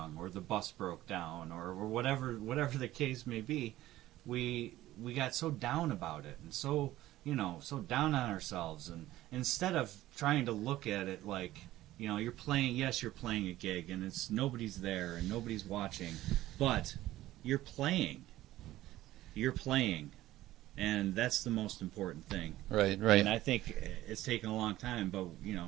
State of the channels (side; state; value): left; quieter; 15.4 dB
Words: or the bus broke down, or whatever the case may be, we got so down about it, and so so down on ourselves, and instead of trying to look at it like, you're playing a gig, and it's nobody's there and nobody's watching, but you're playing. And that's the most important thing. Right. And I think it's taken a long time, but